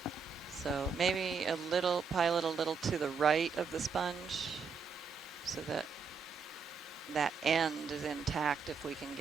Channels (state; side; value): quieter; left; 5.5 dB